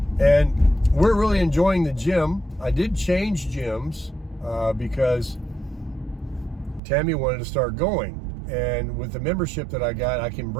And we're really enjoying the gym. I did change gyms because Tammy wanted to start going. And with the membership that I got, I can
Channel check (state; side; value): drops out; left; at 6.8 s